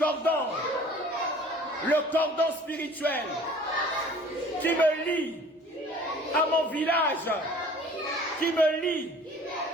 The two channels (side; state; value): both; normal; correlation 0.49